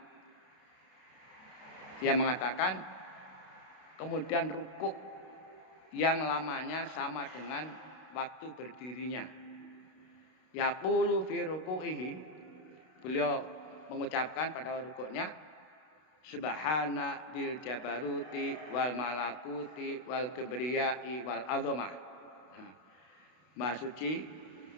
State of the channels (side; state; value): right; late; 32 ms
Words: Dia mengatakan kemudian rukuk yang lamanya sama dengan waktu berdirinya. Yaqulu fi ruku'ihi, beliau mengucapkan pada rukuknya subhana dil jabaruti wal malakuti wal kibriyai wal azamah. Maha suci